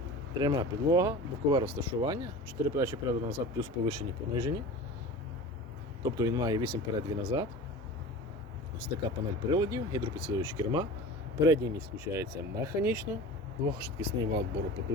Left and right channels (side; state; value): both; normal; correlation 0.36